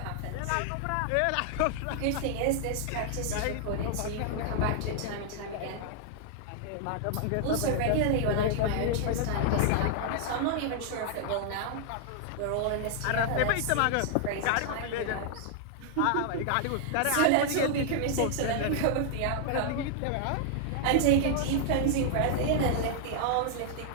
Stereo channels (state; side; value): different; both; correlation -0.01